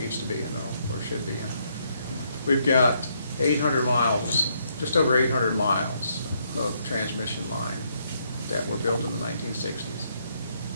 needs to be in or should be in. We've got 800 miles, just over 800 miles of transmission line that were built in the 1960s.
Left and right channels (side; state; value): both; inverted; correlation -0.74